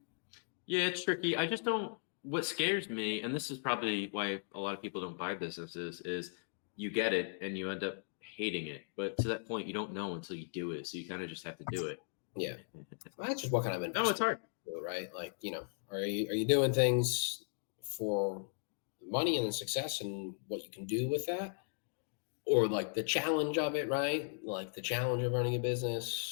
Yeah, it's tricky. I just don't. What scares me, and this is probably why a lot of people don't buy businesses, is you get it and you end up hating it. But to that point, you don't know until you do it. So you kind of just have to do it. Yeah. Well, that's just what kind of investment. No, it's hard. Right? Like, are you doing things for money and success and what you can do with that? or like the challenge of it, right? Like the challenge of running a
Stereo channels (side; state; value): right; silent; digital silence